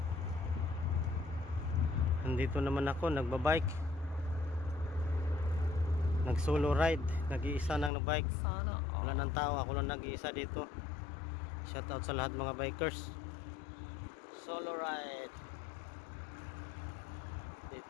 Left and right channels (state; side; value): drops out; right; at 7.9 s